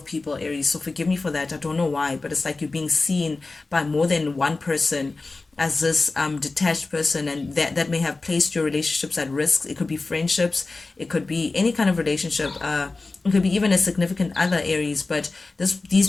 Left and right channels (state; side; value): quieter; right; 3.6 dB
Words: people, Aries, so forgive me for that. I don't know why, but it's like you're being seen by more than one person as this detached person, and that may have placed your relationships at risk. It could be friendships, it could be any kind of relationship, it could be even a significant other, Aries. But